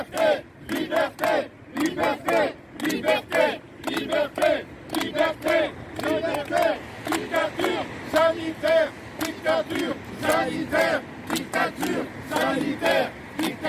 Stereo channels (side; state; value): both; identical; correlation 1.00